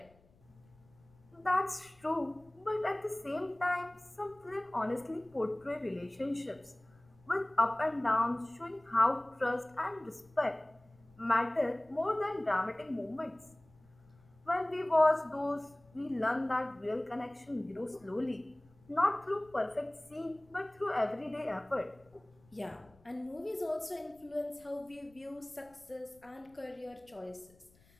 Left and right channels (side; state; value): left; noise; rumble, 29 dB below the sound